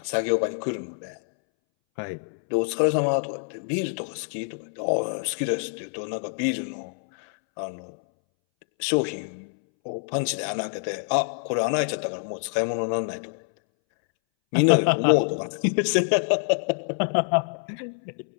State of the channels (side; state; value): right; silent; 61 dB below the other